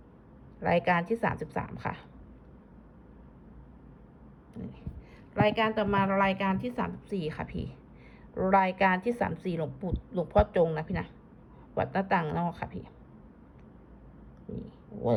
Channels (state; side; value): identical; both; correlation 1.00